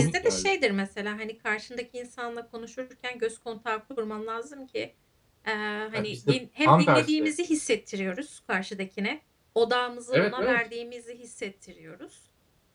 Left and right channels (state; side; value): identical; both; correlation 1.00